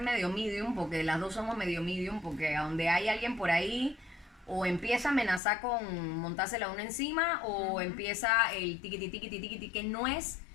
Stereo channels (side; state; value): right; drops out; at 5.4 s